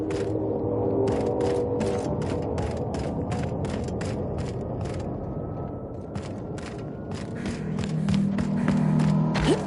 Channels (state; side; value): identical; both; correlation 1.00